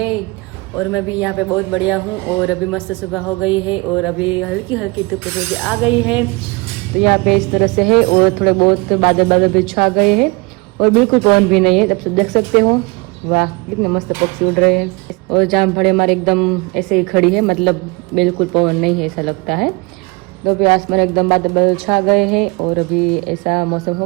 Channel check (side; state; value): left; quieter; 27.1 dB